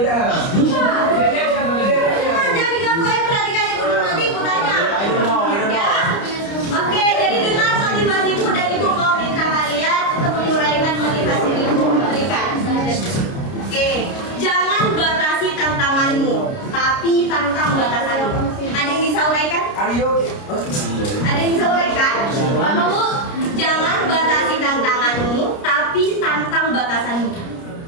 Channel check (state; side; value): late; right; 29 ms